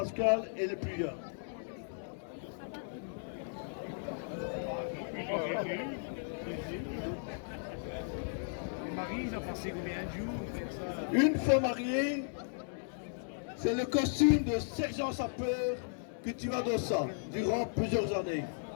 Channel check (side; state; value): right; silent; digital silence